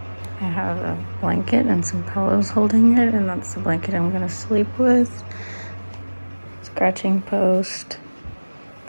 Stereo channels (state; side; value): inverted; both; correlation -1.00